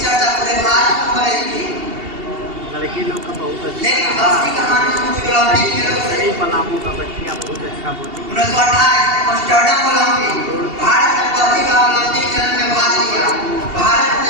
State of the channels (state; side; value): late; left; 2.8 ms